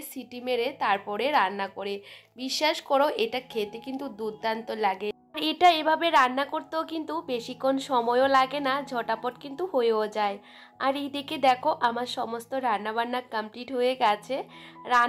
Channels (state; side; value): identical; both; correlation 1.00